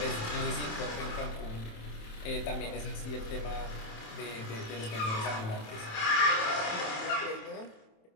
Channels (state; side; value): late; right; 27 ms